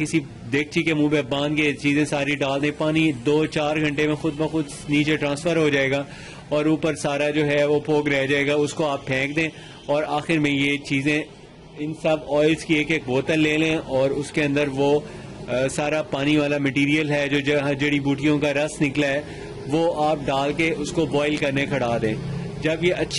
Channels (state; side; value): identical; both; correlation 1.00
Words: देगची के मुंह पे बांध के चीज़ें सारी डाल दें। पानी 2-4 घंटे में खुद ब खुद नीचे ट्रांसफ़र हो जाएगा और ऊपर सारा जो है वो फोग रह जाएगा, उसको आप फेंक दें। और आखिर में ये चीज़ें इन सब ऑयल्स की एक बोतल ले लें और उसके अंदर वो सारा पानी वाला मटेरियल है जो जड़ी बूटियों का रस निकला है वो आप डाल के उसको बॉईल करने खड़ा दें। जब ये